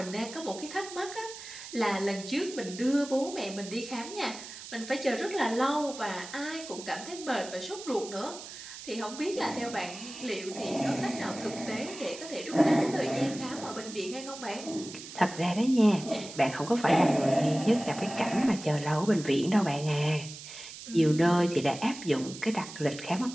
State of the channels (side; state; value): right; noise; hiss, 13 dB below the sound